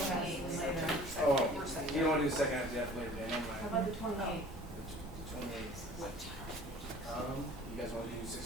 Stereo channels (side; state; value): both; normal; correlation 0.48